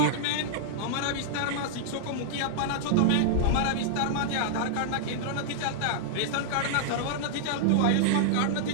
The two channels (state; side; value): different; both; correlation -0.01